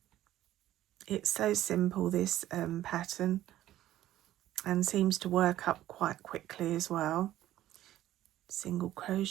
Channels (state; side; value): quieter; left; 13.7 dB